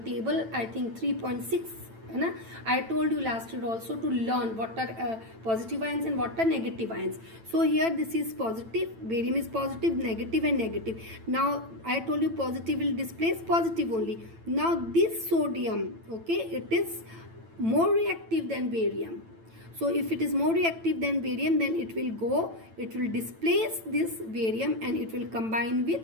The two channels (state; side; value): late; left; 9.0 ms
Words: table, I think 3.6. I told you last year also to learn what are positive ions and what are negative ions. So here this is positive, barium is positive, negative and negative. Now I told you positive will displace positive only. Now this sodium, okay, it is more reactive than barium. So if it is more reactive than barium, then it will displace this barium and it will combine